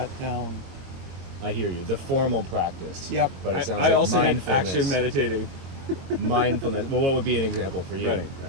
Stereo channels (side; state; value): left; late; 22 ms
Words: down. I hear you. The formal practice. Yep. But it sounds I like also had mindfulness. action meditating. Mindfulness. Well, what would be an example for you?